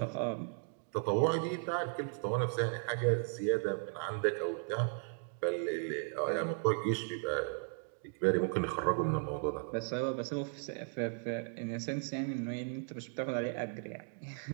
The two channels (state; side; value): silent; left; 54 dB below the other